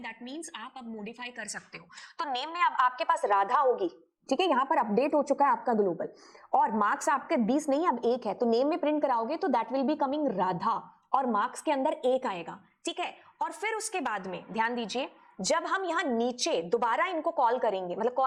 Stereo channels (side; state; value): both; identical; correlation 1.00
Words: मींस आप अब मॉडिफाई कर सकते हो। तो नेम में अब आपके पास राधा होगी, ठीक है, यहां पर अपडेट हो चुका है आपका ग्लोबल, और मार्क्स आपके 20 नहीं अब 1 है, तो नेम में प्रिंट कराओगे तो that will be coming Radha, और मार्क्स के अंदर 1 आएगा, ठीक है। और फिर उसके बाद में ध्यान दीजिए, जब हम यहां नीचे दोबारा इनको कॉल करेंगे, मतलब